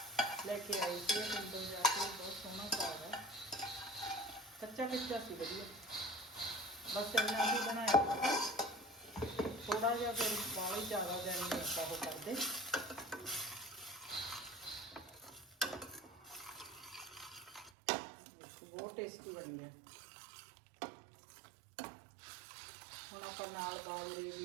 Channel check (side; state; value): left; drops out; at 17.7 s